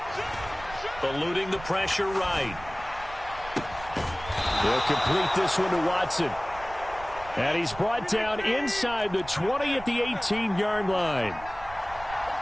Eluding the pressure right. They'll complete this one to Watson. And he's brought down inside the 20 at the 18-yard line.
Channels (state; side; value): noise; right; rumble, 16 dB below the sound